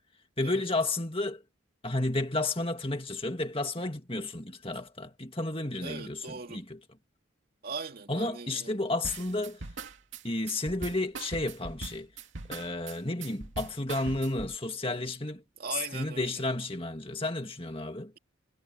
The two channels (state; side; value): normal; both; correlation 0.52